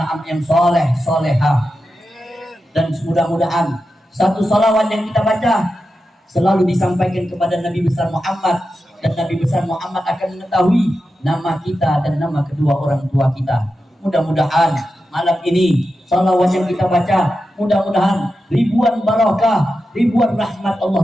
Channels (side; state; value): both; normal; correlation 0.90